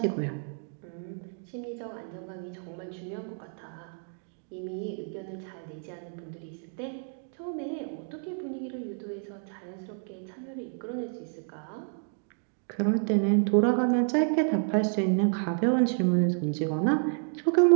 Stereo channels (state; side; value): silent; left; 58 dB below the other